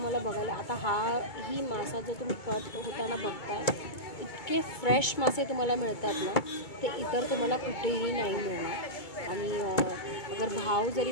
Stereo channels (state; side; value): late; right; 2.2 ms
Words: बघायला आता ही मासा जो तुम्ही कट होताना बघताय, इतके फ्रेश मासे तुम्हाला मिळतात ना, ते इतर तुम्हाला कुठेही नाही मिळणार। आणि अगर भाव जरी